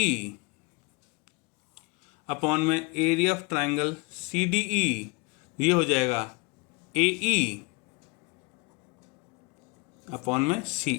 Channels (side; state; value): right; quieter; 28.1 dB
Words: upon में एरिया ऑफ ट्रायंगल CDE, ये हो जाएगा AE अपॉन में